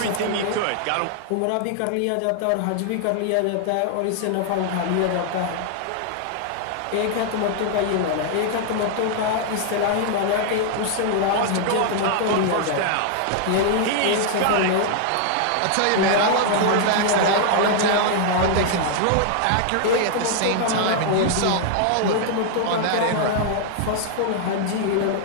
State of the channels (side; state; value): both; different; correlation 0.00